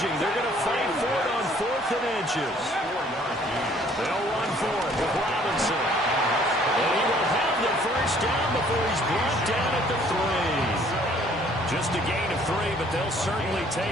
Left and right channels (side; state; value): both; normal; correlation 0.59